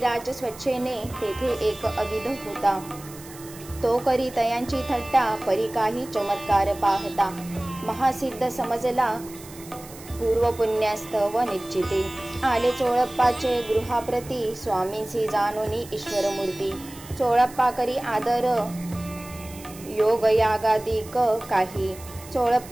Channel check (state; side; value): noise; right; hiss, 18 dB below the sound